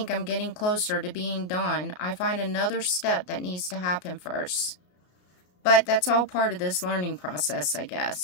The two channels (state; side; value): late; right; 33 ms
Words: I'm getting closer to being done, I find another step that needs to happen first. But that's all part of this learning process, I